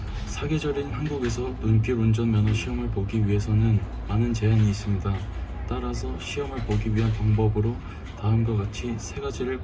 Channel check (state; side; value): identical; both; correlation 1.00